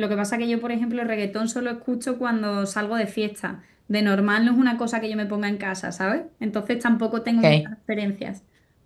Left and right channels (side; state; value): both; identical; correlation 1.00